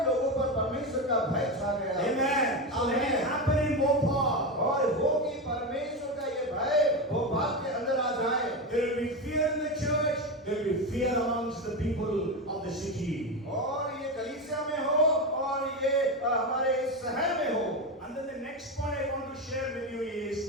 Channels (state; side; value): normal; both; correlation 0.16